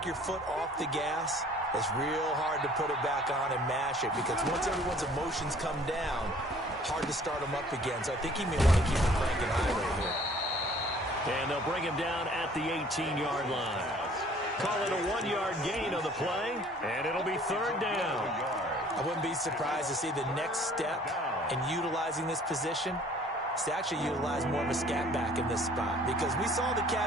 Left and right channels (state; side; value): normal; both; correlation 0.54